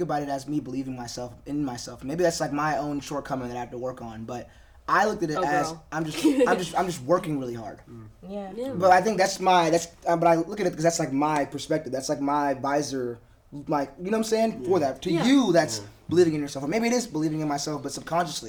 about it as me believing in myself. Maybe that's like my own shortcoming that I have to work on, but I looked at it as I'm just working really hard. Yeah. But I think but I look at it because that's like my perspective. That's like my visor, like, you know what I'm saying? For that, to you, that's believing in yourself, or maybe it is believing in myself, but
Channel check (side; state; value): both; identical; correlation 1.00